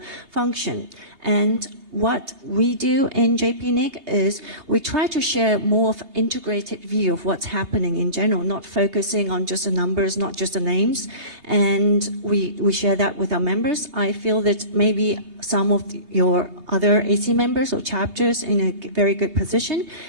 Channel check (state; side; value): late; left; 3.3 ms